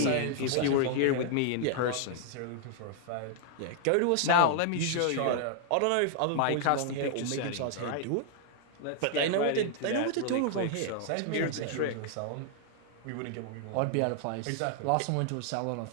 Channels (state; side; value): different; both; correlation -0.01